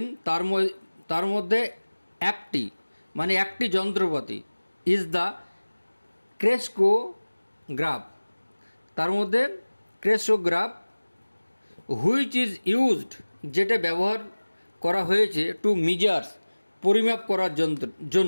তার মধ্যে একটি মানে একটি যন্ত্রপাতি, ইজ দ্য ক্রেস্কোগ্রাফ, তার মধ্যে ক্রেস্কোগ্রাফ, হুইচ ইজ ইউজড, যেটা ব্যবহার করা হয়েছে টু মিজার্স, পরিমাপ করার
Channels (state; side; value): inverted; both; correlation -1.00